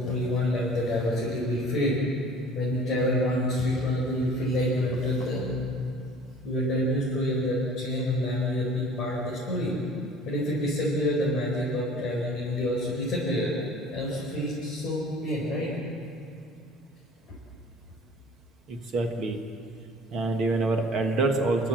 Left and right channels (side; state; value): both; normal; correlation 0.48